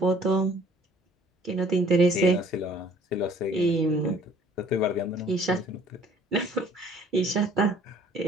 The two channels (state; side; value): normal; both; correlation 0.56